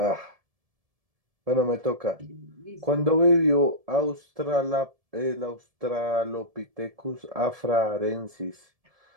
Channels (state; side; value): late; left; 1.7 ms